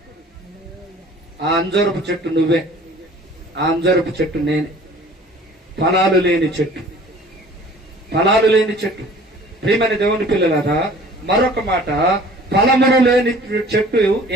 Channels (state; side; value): normal; both; correlation 0.49